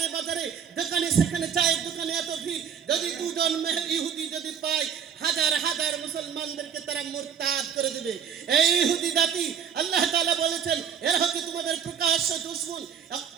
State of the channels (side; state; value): left; quieter; 7.6 dB